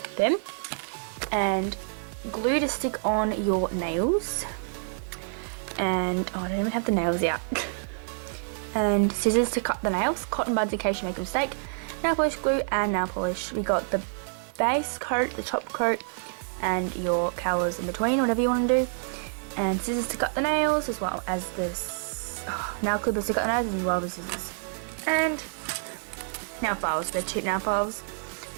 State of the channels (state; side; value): silent; left; digital silence